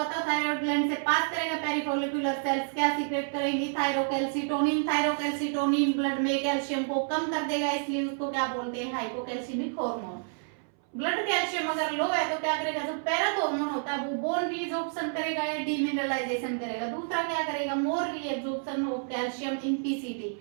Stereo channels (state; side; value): silent; left; 58 dB below the other